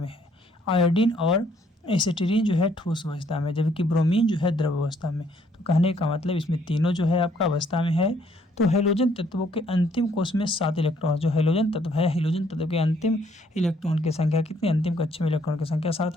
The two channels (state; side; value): normal; both; correlation 0.66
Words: है। आयोडीन और एसिटिलीन जो है ठोस अवस्था में, जबकि ब्रोमीन जो है द्रव अवस्था में। तो कहने का मतलब इसमें तीनों जो है आपका अवस्था में है। तो हैलोजन तत्वों के अंतिम कोष में 7 इलेक्ट्रॉन, जो हैलोजन तत्व है, हैलोजन तत्व के अंतिम इलेक्ट्रॉन की संख्या कितनी, अंतिम कक्षा में इलेक्ट्रॉन की संख्या 7